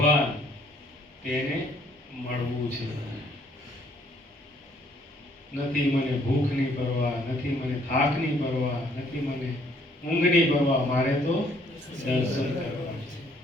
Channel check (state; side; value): normal; both; correlation 0.64